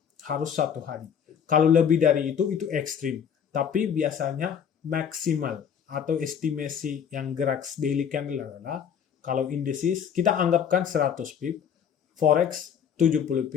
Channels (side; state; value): right; quieter; 7.9 dB